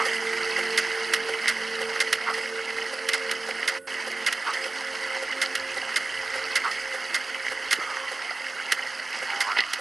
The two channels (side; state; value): left; quieter; 3.2 dB